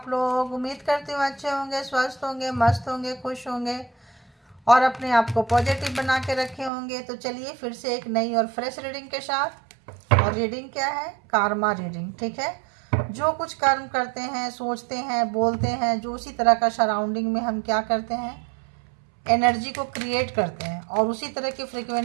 लोग? उम्मीद करती हूँ अच्छे होंगे, स्वस्थ होंगे, मस्त होंगे, खुश होंगे और अपने आप को पॉजिटिव बना के रखे होंगे। तो चलिए फिर से एक नई और फ्रेश रीडिंग के साथ। और रीडिंग क्या है? Karma reading. ठीक है, जो कुछ कर्म करते हैं, सोचते हैं, बोलते हैं, जो उसी तरह का सराउंडिंग में हम क्या करते हैं, एनर्जी को क्रिएट करते हैं और उसी तरह की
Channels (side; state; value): left; drops out; at 6.7 s